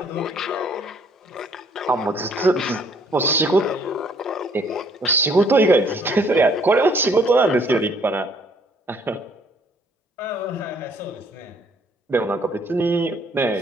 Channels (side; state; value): both; normal; correlation 0.62